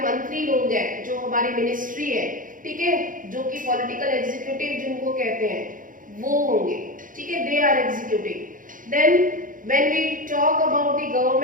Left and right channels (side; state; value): left; late; 0.39 ms